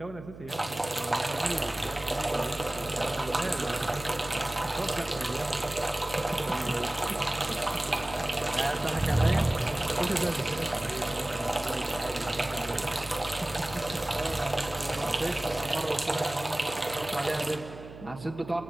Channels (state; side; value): noise; right; hum, 15 dB below the sound